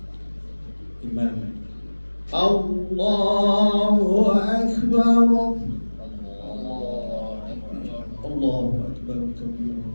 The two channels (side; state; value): both; inverted; correlation -1.00